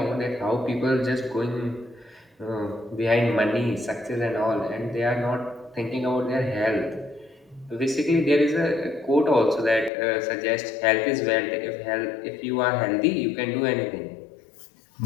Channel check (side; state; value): right; drops out; at 9.9 s